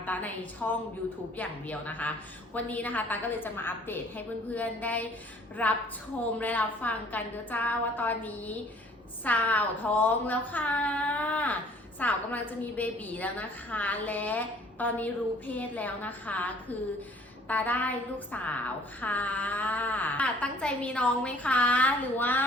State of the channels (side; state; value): both; normal; correlation 0.55